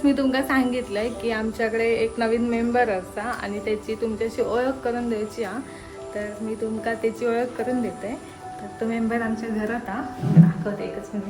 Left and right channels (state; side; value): identical; both; correlation 1.00